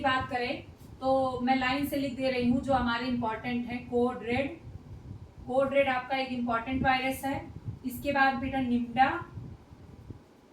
करें तो मैं लाइन से लिख दे रही हूँ जो हमारे इंपॉर्टेंट है। कोड रेड आपका एक इंपॉर्टेंट वायरस है। इसके बाद बेटा निम्डा,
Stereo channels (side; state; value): both; identical; correlation 1.00